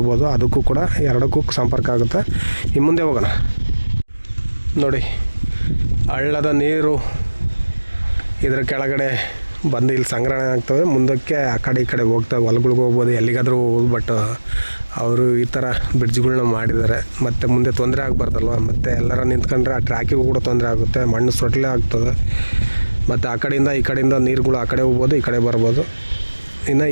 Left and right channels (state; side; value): inverted; both; correlation -1.00